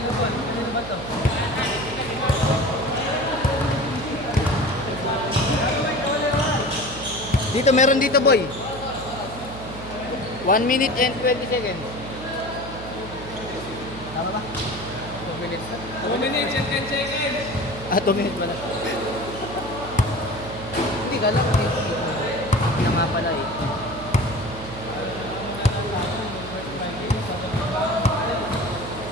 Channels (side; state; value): right; noise; hum, 12 dB below the sound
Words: Dito, meron dito boy. 1 minute and 20 seconds. Tama ba? 2 minutes. 2 minutes and 10 seconds. 2 minutes ba na? Hindi, kala ko dito. Hindi na nga pala eh.